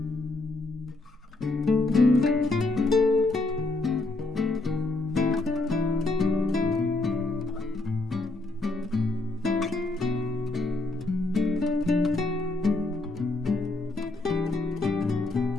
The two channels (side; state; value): right; quieter; 3.1 dB